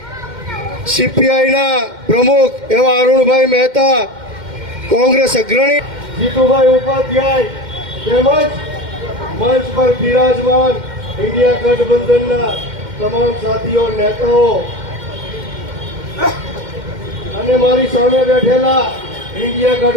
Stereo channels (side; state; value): left; late; 2.1 ms